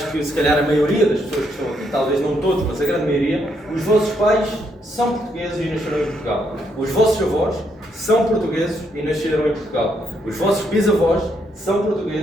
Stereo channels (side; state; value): both; normal; correlation 0.75